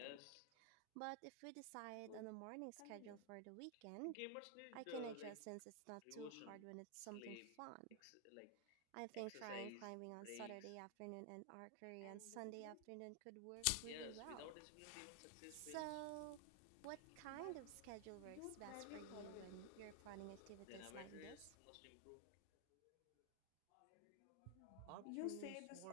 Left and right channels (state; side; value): different; both; correlation 0.00